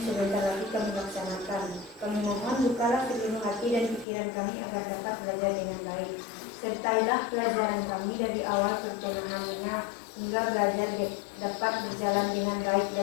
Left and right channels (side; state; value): right; drops out; at 4.0 s